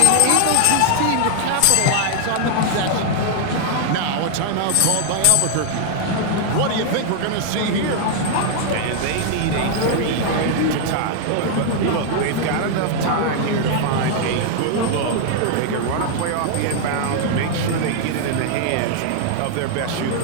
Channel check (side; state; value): both; different; correlation 0.00